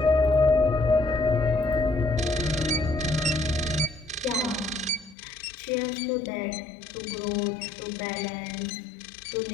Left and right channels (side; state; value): right; drops out; at 5.2 s